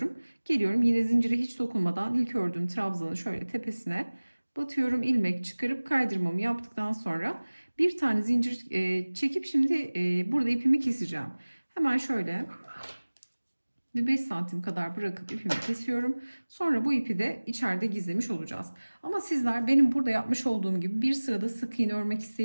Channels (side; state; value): both; inverted; correlation -1.00